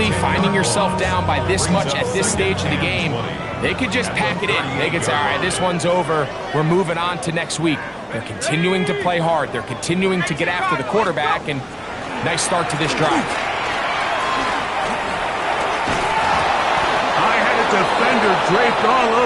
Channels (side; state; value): both; identical; correlation 1.00